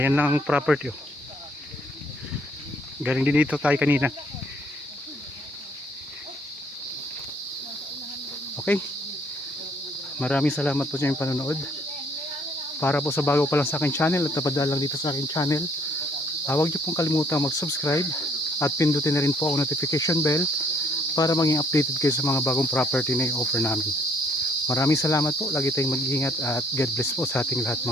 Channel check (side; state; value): both; normal; correlation 0.64